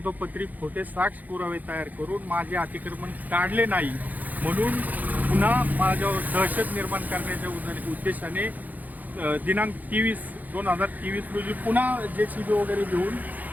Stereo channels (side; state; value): left; late; 0.082 ms